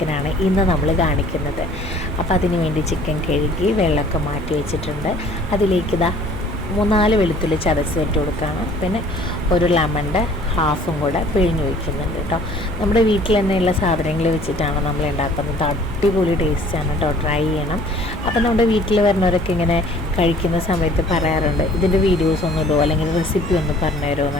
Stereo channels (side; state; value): left; noise; hum, 15 dB below the sound